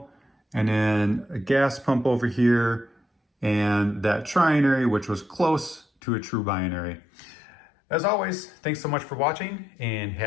and then a gas pump over here, and that trinary, which was close to a true binary. As always, thanks so much for watching and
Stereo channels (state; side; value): drops out; right; at 5.9 s